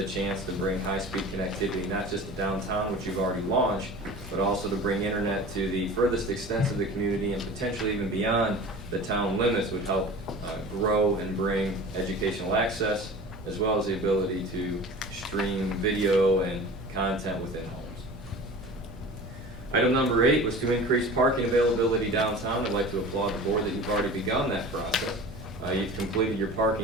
chance to bring high-speed connectivity, not just to downtown, which you've already launched, but also to bring internet to the furthest extents of the community and potentially even beyond the town limits would help grow and bring educational access, as well as the ability to stream video and content within homes. Item number 8 was to increase parking availability downtown. I'd like to applaud the board that you've already begun that process. You've completed your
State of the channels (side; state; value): both; normal; correlation 0.38